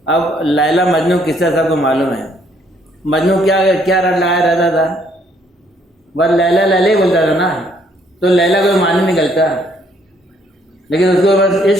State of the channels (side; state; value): both; normal; correlation 0.66